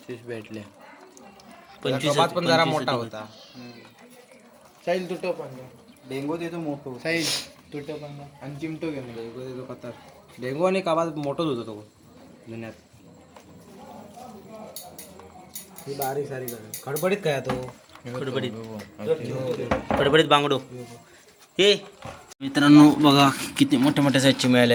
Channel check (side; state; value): both; identical; correlation 1.00